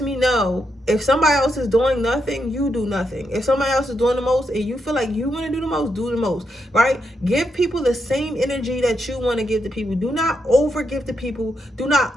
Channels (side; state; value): both; normal; correlation 0.82